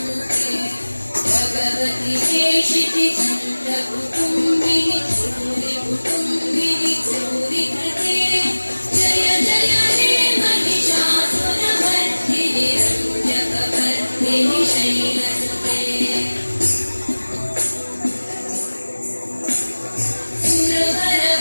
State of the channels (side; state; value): both; inverted; correlation -1.00